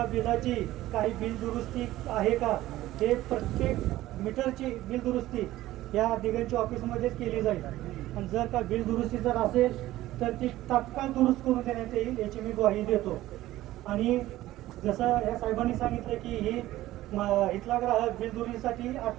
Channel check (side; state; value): left; quieter; 15.7 dB